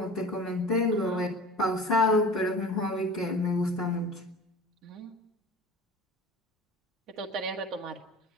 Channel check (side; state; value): both; normal; correlation 0.38